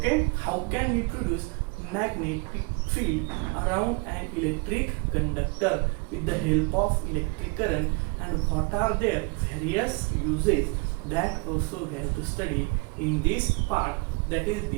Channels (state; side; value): quieter; left; 31.1 dB